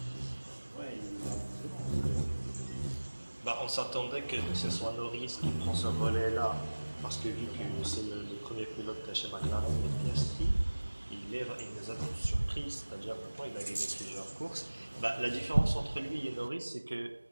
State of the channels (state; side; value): inverted; both; correlation -1.00